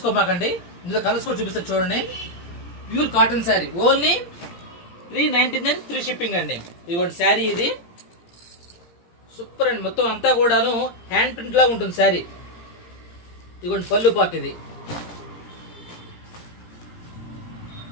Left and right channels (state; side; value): late; right; 17 ms